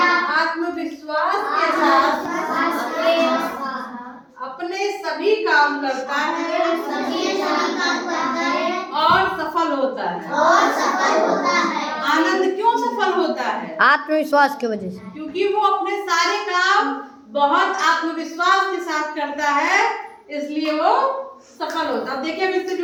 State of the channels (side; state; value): both; identical; correlation 1.00